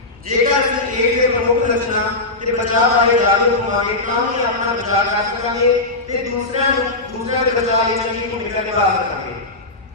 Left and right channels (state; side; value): quieter; right; 3.0 dB